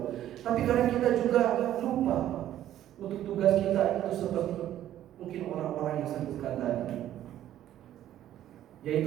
Tapi kadang kita juga lupa untuk tugas kita itu seperti mungkin orang-orang yang sebutkan tadi,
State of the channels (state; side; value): quieter; left; 12.2 dB